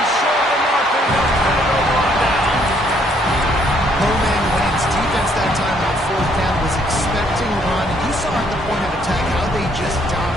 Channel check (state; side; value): normal; both; correlation 0.67